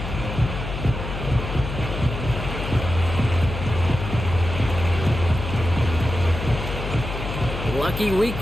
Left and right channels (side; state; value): left; noise; hum, 6 dB below the sound